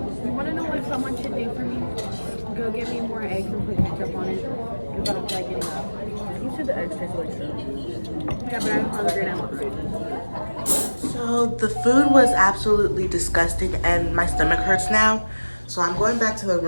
You want to know what someone should do for me? Go get me more eggs and put ketchup on it. Because I don't feel like getting up. You said the eggs taste like shit. Yeah, but I'm hungry and I want food. So the food was absolutely disgusting and my stomach hurts now. So I'm going back to the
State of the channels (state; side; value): inverted; both; correlation -1.00